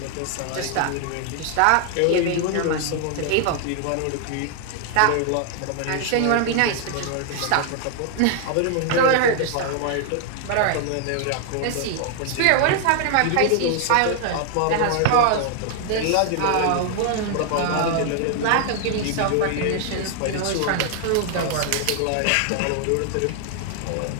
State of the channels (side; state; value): both; different; correlation 0.00